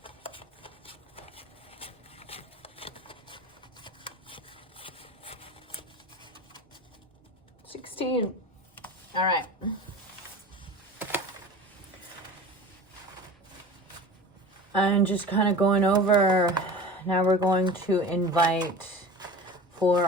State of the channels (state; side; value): normal; both; correlation 0.36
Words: 16. All right. I'm just kind of going over. Now we're going to invite for